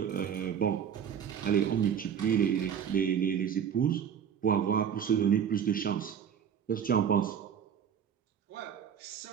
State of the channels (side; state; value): left; quieter; 8.2 dB